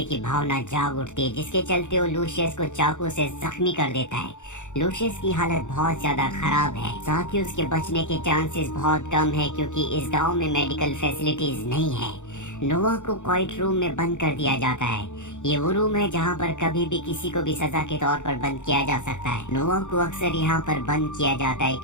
की भावना जाग उठती है, जिसके चलते वो लूशियस को चाकू से जख्मी कर देता है। लूशियस की हालत बहुत ज्यादा खराब है, साथ ही उसके बचने के चांसेस बहुत कम है क्योंकि इस गांव में मेडिकल फैसिलिटीज नहीं है। नोवा को क्वाइट रूम में बंद कर दिया जाता है। ये वो रूम है जहाँ पर कभी भी किसी को भी सजा के तौर पर बंद किया जा सकता है। नोवा को अक्सर यहाँ पर बंद किया जाता है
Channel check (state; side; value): late; right; 0.85 ms